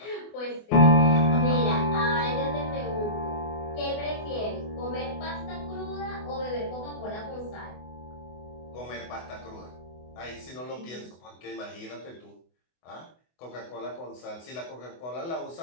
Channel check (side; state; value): right; late; 24 ms